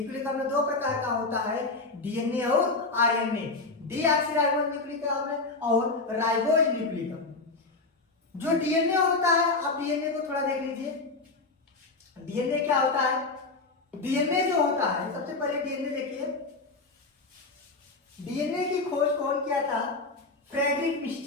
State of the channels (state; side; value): quieter; right; 3.6 dB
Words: अम्ल दो प्रकार का होता है, डीएनए और आरएनए, डीऑक्सीराइबोज न्यूक्लिक अम्ल और राइबोज न्यूक्लिक अम्ल। जो डीएनए होता है, आप डीएनए को थोड़ा देख लीजिए। डीएनए क्या होता है? डीएनए जो होता है, सबसे पहले डीएनए देखिए। डीएनए की खोज कौन किया था? Frederick